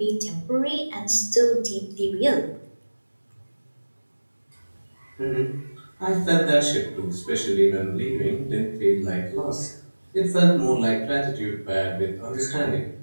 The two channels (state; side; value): inverted; both; correlation -1.00